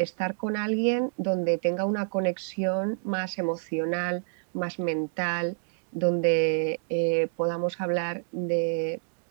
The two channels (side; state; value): left; silent; digital silence